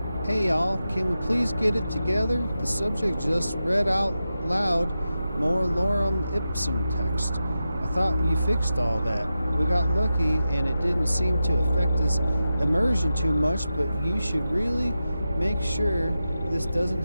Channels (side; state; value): both; inverted; correlation -0.92